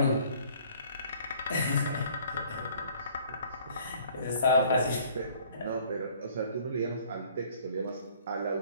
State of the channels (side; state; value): both; inverted; correlation -0.56